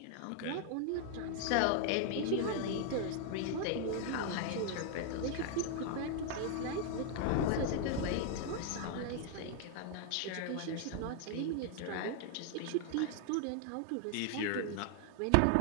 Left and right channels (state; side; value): different; both; correlation 0.00